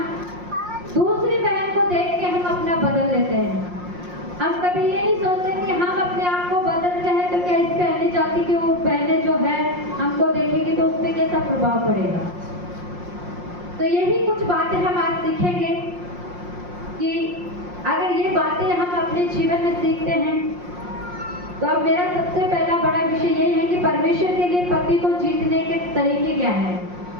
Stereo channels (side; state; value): left; late; 5.6 ms